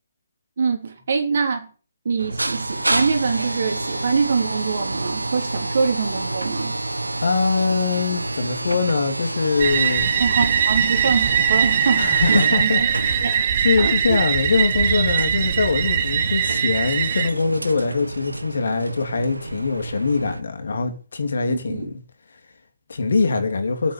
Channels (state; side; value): inverted; both; correlation -0.78